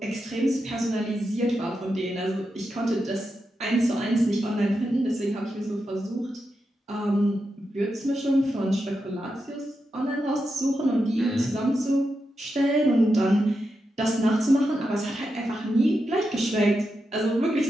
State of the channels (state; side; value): normal; both; correlation 0.87